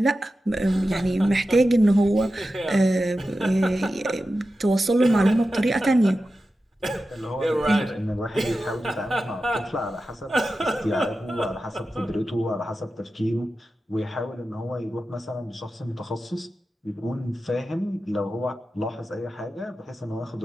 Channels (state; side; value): normal; both; correlation 0.92